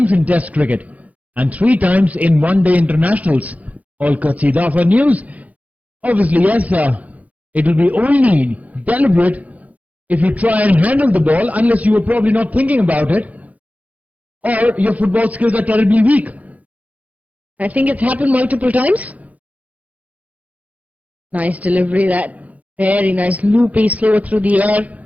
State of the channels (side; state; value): left; late; 0.071 ms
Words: in Test cricket and 3 times in one-day internationals. All courtesy Dafa News. Obviously, yes, it will be only deliberate if you try and handle the ball, unless you were probably not thinking about it, or your football skills are terribly weak. I think it's happened multiple times. Nice delivery, that. Very nice loopy, slow through the air.